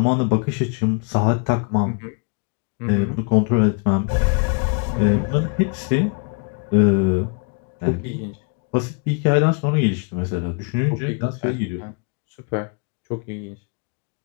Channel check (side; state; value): right; quieter; 35.7 dB